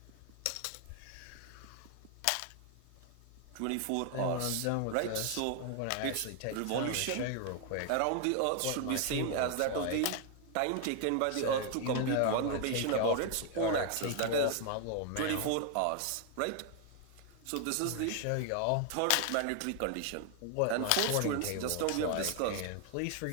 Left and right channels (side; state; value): both; different; correlation 0.00